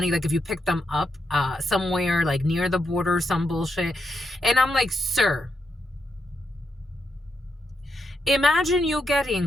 Like, if you pick them up somewhere like near the border, some bullshit. And I'm like, sir, imagine you getting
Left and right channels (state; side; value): normal; both; correlation 0.82